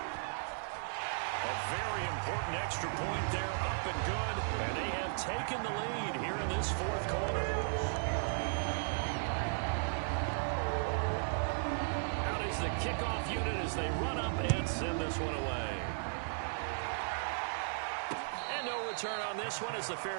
A very important extra point there, up and good. And they have taken the lead here in this fourth quarter. Out is the kickoff unit as they run up and send this one away. And no return on this one as the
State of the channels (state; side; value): silent; left; digital silence